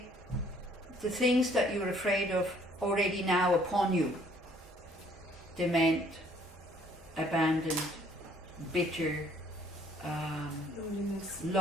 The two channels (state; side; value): normal; both; correlation 0.61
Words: the things that you're afraid of already now upon you. Dement, abandoned, bitter,